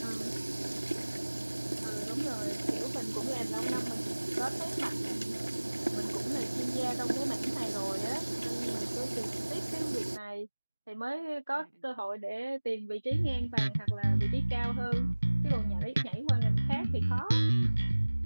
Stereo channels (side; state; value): both; inverted; correlation -1.00